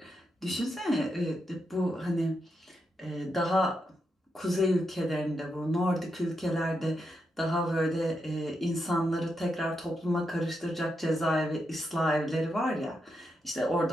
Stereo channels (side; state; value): both; normal; correlation 0.84